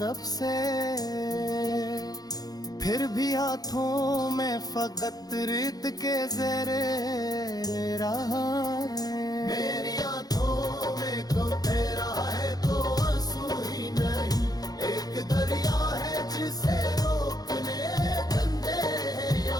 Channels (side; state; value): right; late; 0.19 ms